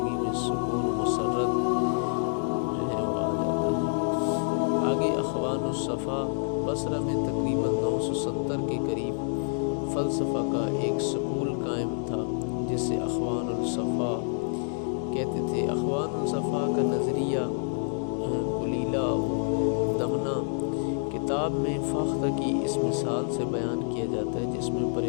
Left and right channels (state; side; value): silent; right; digital silence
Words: الصفا بصرہ میں تقریباً 970 کے قریب فلسفہ کا ایک سکول قائم تھا جسے اخوان الصفا کہتے تھے۔ اخوان الصفا کا نظریہ قلیلہ دمنہ کتاب میں فاختہ کی اس مثال سے بیان کیا جاتا ہے، جس میں